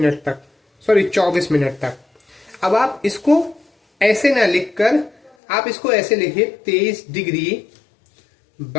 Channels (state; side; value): drops out; right; at 5.4 s